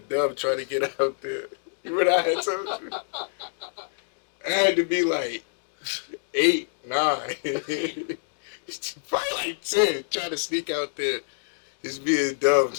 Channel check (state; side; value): silent; right; digital silence